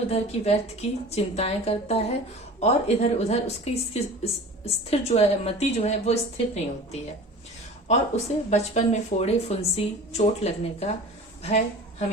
की व्यर्थ की चिंताएं करता है और इधर उधर उसकी स्थिर जो है मति जो है वो स्थिर नहीं होती है, और उसे बचपन में फोड़े फुंसी चोट लगने का भय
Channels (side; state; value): both; normal; correlation 0.39